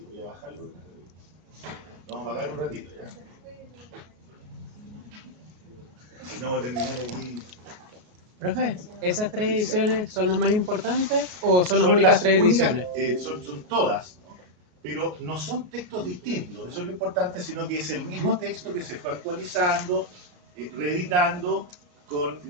voy a bajarlo. Vamos a apagar un ratito ya. Si no, voy a terminar aquí. Profe, ¿esas 3 ediciones son las más importantes o son las únicas 3 ediciones? Son todas, ¿no? Pero no son textos distintos, eso es lo importante, sino que es el mismo texto que se fue actualizando, reeditando con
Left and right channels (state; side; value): late; left; 33 ms